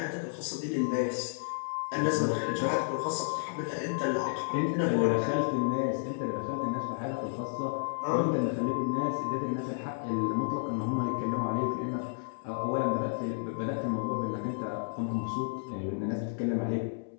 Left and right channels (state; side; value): silent; right; 57 dB below the other